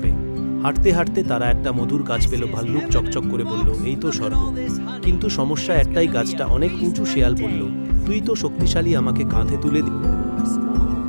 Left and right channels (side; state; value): both; inverted; correlation -1.00